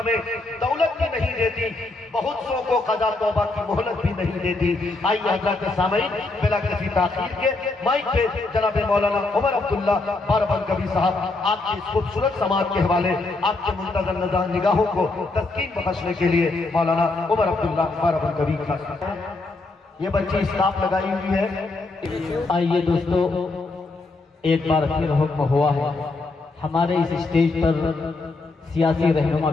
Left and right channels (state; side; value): quieter; right; 3.3 dB